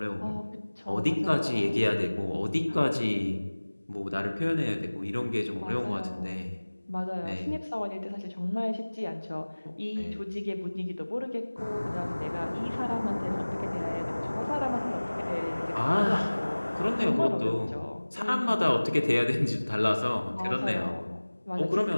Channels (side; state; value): both; inverted; correlation -1.00